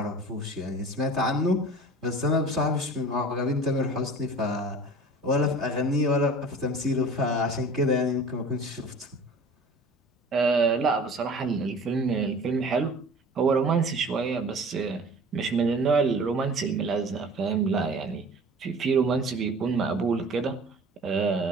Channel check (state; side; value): normal; both; correlation 0.43